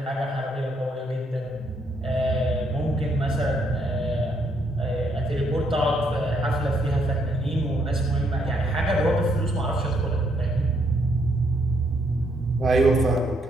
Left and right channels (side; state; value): both; normal; correlation 0.73